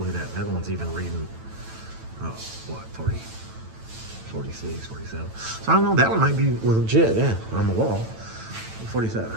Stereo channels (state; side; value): late; left; 9.0 ms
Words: at that. That one's even reading, oh, what, 40, 46, 47. So I don't know, that one might be legit, yeah, on the wall. 47.